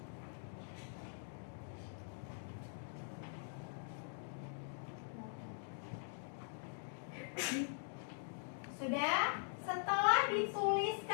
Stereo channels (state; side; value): silent; right; digital silence